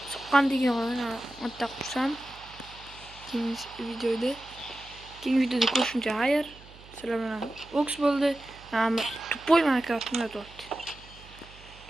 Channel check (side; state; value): right; noise; hum, 21 dB below the sound